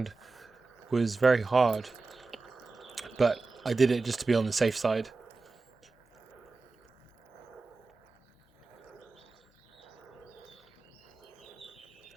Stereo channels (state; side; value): quieter; left; 3.8 dB